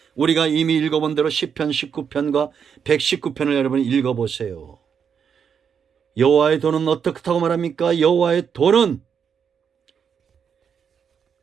우리가 이미 읽어본 대로 시편 19편과 119편을 여러분 읽어보세요. 여호와의 도는 어떻다고 말합니까? 여호와의 도는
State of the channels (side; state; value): left; quieter; 7.1 dB